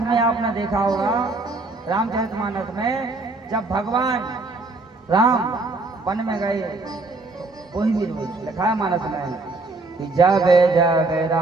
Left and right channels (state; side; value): quieter; left; 3.3 dB